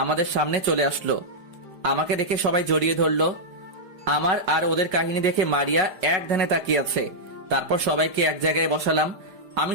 আমাদের সামনে চলে আসলো। আমাকে দেখে সবাই জড়িয়ে ধরলো। আমার আর ওদের কাহিনী দেখে মারিয়া এক ধ্যানে তাকিয়ে আছে। তারপর সবাইকে এক জায়গায় বসালাম। আমি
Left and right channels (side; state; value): left; late; 5.0 ms